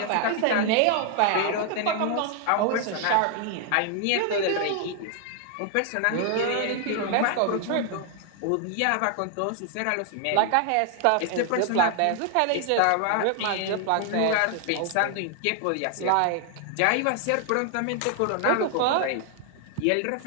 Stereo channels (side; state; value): both; different; correlation 0.00